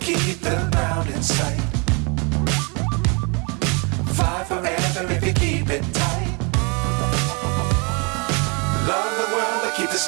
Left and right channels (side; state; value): left; quieter; 32.6 dB